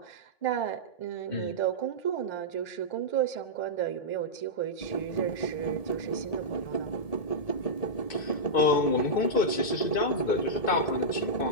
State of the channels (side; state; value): right; late; 1.7 ms